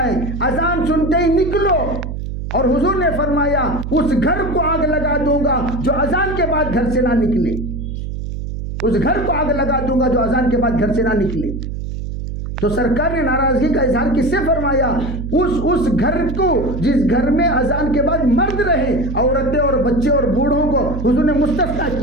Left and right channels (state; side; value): noise; right; hum, 6 dB below the sound